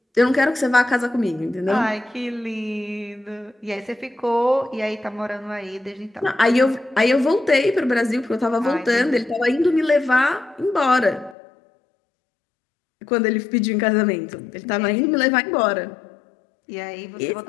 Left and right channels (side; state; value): right; drops out; at 11.4 s